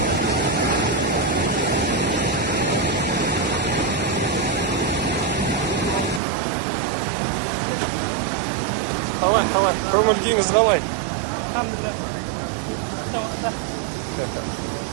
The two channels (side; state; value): left; drops out; at 6.2 s